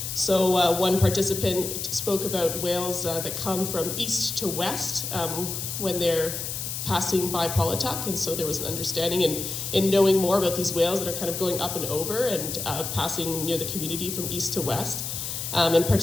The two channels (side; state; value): left; noise; hiss, 5 dB below the sound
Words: So one participant spoke about whales that come from east to west when they're passing by Paulatuk, and so there was an understanding in knowing more about these whales that are kind of going up and over and passing near the community from east to west. And